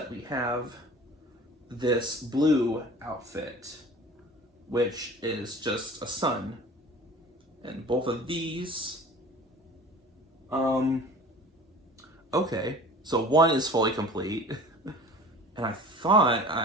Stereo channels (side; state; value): both; normal; correlation 0.42